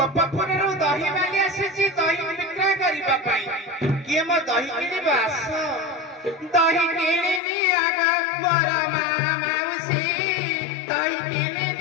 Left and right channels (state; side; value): drops out; right; at 7.4 s